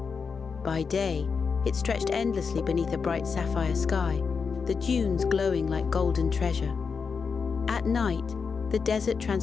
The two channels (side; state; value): right; quieter; 5.5 dB